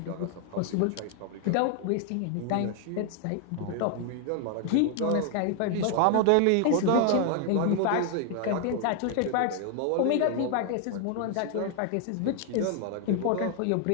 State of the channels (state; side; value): different; both; correlation 0.00